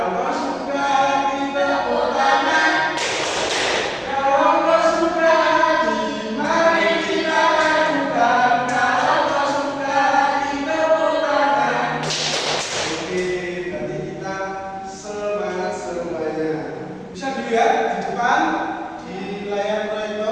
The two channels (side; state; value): both; identical; correlation 1.00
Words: kau suka kita tepuk tangan. Kalau kau suka mari kita lakukan. Kalau kau suka kita tepuk tangan. Oke, tadi kita semangat semuanya. Bisa dilihat di depan di layar